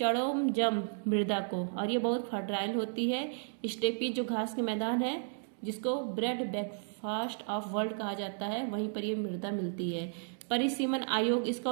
मृदा को, और ये बहुत फर्टाइल होती है। स्टेपी जो घास के मैदान है जिसको ब्रेड ब्रेकफास्ट ऑफ वर्ल्ड कहा जाता है, वहीं पर ये मृदा मिलती है। परिसीमन आयोग, इसका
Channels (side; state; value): left; silent; digital silence